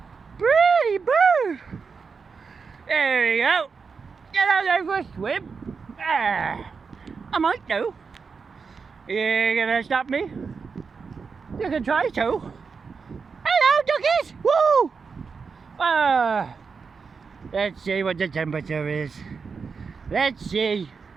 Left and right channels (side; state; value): left; quieter; 5.3 dB